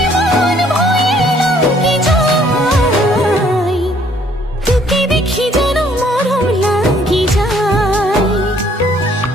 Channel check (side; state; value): both; normal; correlation 0.62